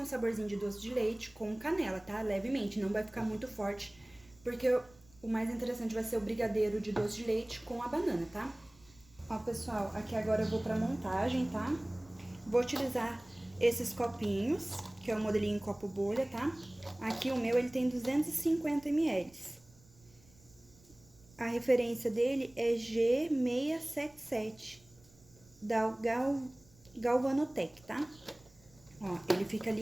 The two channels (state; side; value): noise; right; rumble, 27 dB below the sound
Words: saborzinho de doce de leite com canela, tá? Levemente, não vai ficar muito forte, porque o mais interessante vai ser o brigadeiro de doce de leite com a banana, tá? Ó, pessoal, aqui agora eu vou pra montagem, tá? Vou utilizar esses copinhos, que é o modelinho copo bolha, tá? Aqui o meu, ele tem 250 ml. A referência dele é G677, da Galvanotec, tá? Ó, ele fica